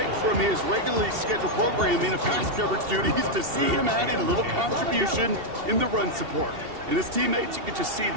from his regularly scheduled programming of pass coverage duties to see him add in a little contribution in the run support. And his teammates, you can just see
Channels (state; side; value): late; left; 2.7 ms